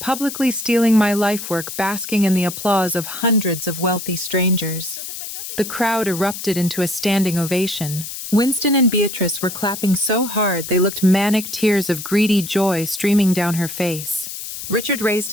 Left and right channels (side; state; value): left; noise; hiss, 8 dB below the sound